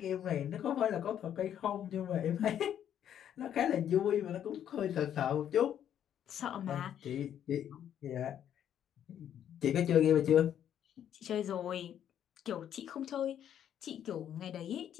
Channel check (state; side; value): quieter; right; 9.9 dB